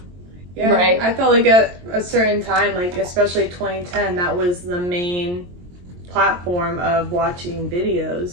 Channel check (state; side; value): late; left; 23 ms